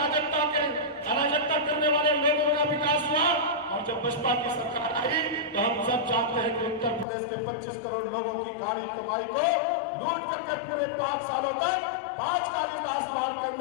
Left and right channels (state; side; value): drops out; right; at 7.1 s